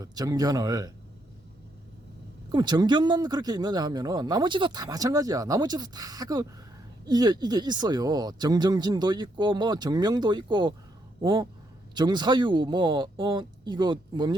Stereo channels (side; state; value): both; normal; correlation 0.76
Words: 정견을. 그럼 정견만 그렇게 있느냐 하면은 나머지도 다 마찬가지야. 나머지도 다 이게 있어요. 정정진도 있고 뭐 정명도 있고 정사유 이거